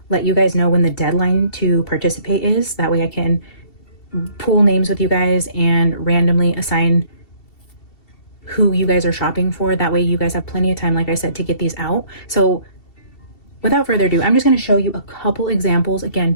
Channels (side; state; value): right; late; 2.7 ms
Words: let you guys know when the deadline to participate is. That way I can pool names with you guys and randomly assign who you guys are shopping for. That way you guys have plenty of time, like I said, to get these out. So without further ado, I'm just going to show you a couple examples.